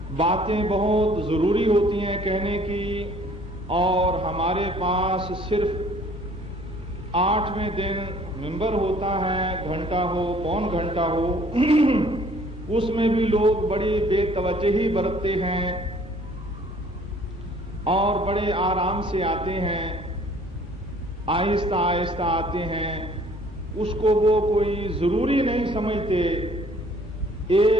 باتیں بہت ضروری ہوتی ہیں کہنے کی، اور ہمارے پاس صرف 8ویں دن ممبر ہوتا ہے، گھنٹہ ہو پون گھنٹہ ہو، اس میں بھی لوگ بڑی بے توجہی برتتے ہیں اور بڑے آرام سے آتے ہیں، آہستہ آہستہ آتے ہیں. اس کو وہ کوئی ضروری نہیں سمجھتے،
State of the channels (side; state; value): both; normal; correlation 0.56